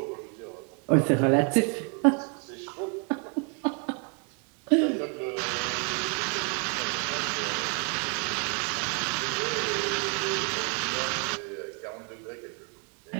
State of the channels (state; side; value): quieter; left; 38.1 dB